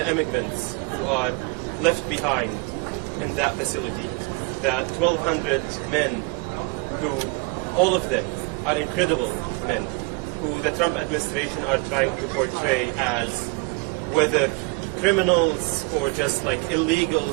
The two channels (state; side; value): quieter; left; 28.9 dB